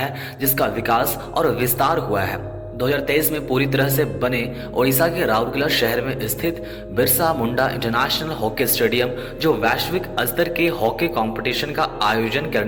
जिसका विकास और विस्तार हुआ है। 2023 में पूरी तरह से बने ओडिशा के राउरकेला शहर में स्थित Birsa Munda international hockey stadium, जो वैश्विक स्तर के हॉकी कंपटीशन का आयोजन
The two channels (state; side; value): identical; both; correlation 1.00